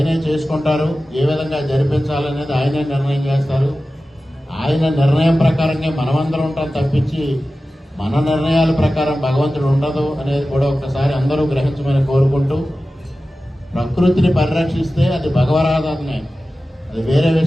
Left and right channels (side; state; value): both; normal; correlation 0.95